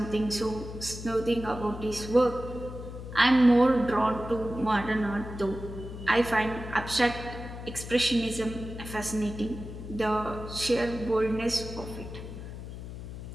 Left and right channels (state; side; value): noise; left; hum, 10 dB below the sound